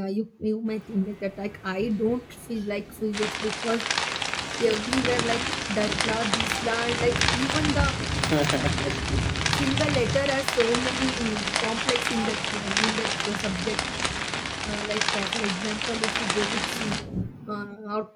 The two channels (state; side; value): identical; both; correlation 1.00